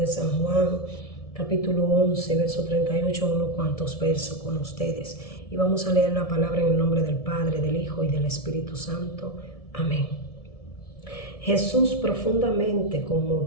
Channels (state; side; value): late; right; 1.7 ms